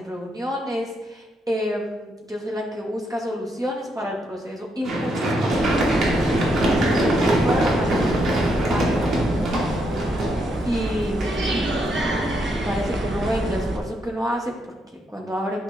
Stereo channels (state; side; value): normal; both; correlation 0.78